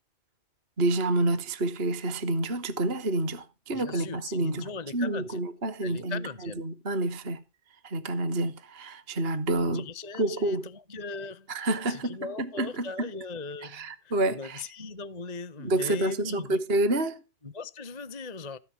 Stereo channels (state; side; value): late; left; 2.8 ms